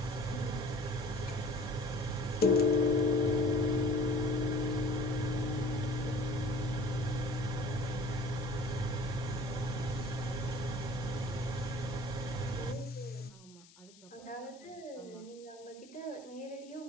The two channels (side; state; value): left; noise; hiss, 24 dB below the sound